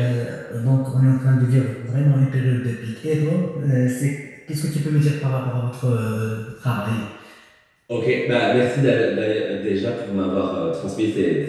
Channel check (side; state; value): both; identical; correlation 1.00